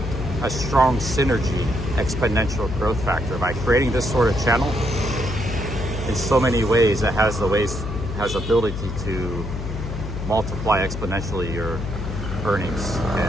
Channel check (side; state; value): left; noise; hum, 6 dB below the sound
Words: strong synergy, exponential growth factor by creating this sort of channel. In so many ways, it has ability to multiply exponentially your earnings